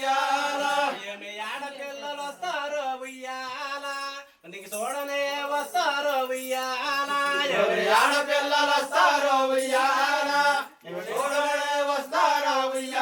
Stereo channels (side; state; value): both; identical; correlation 1.00